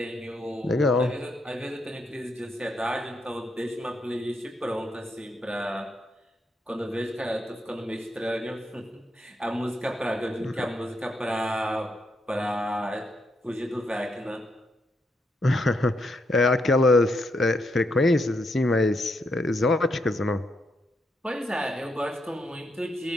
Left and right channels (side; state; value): both; normal; correlation 0.79